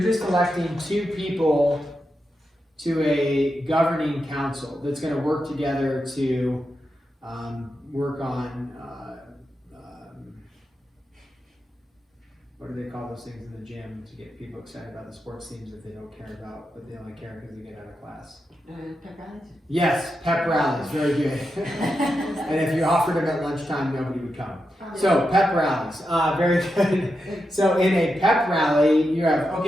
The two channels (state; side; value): normal; both; correlation 0.87